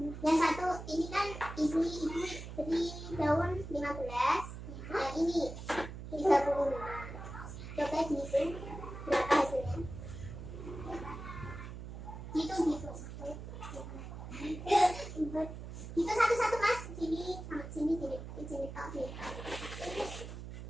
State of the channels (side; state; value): right; noise; hum, 10 dB below the sound